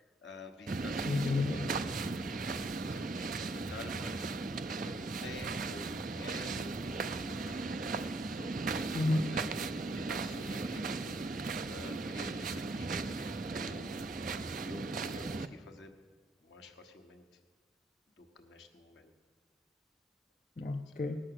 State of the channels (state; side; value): normal; both; correlation 0.69